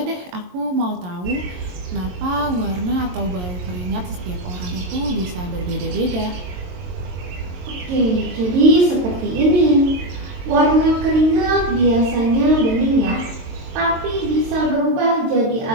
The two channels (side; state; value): left; late; 22 ms